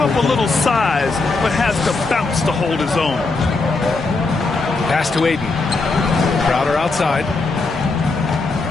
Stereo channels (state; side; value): quieter; right; 3.7 dB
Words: up a little size, but has the bounce to hold his own. Pass to Aiden. Crowder outside.